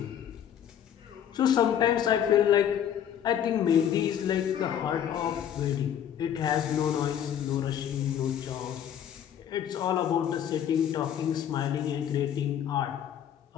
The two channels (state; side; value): quieter; right; 9.6 dB